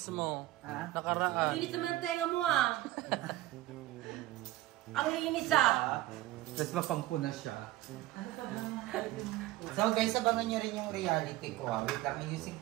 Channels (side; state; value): left; quieter; 16.3 dB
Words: mo? Ha? Nakaraan. Linis naman ang tenga mo ah. Ang linis ah. Tapos mapangpuna siya. So guys, abangan nyo rin yung reality ko. Wait lang, ayusin